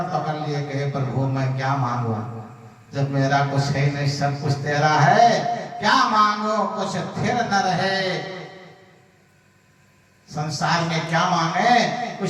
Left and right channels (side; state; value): both; identical; correlation 1.00